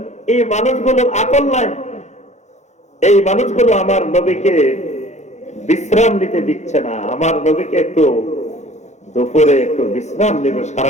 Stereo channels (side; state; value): right; late; 0.33 ms